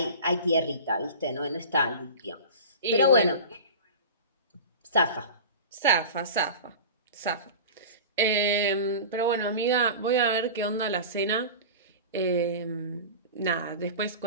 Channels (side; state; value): both; inverted; correlation -0.34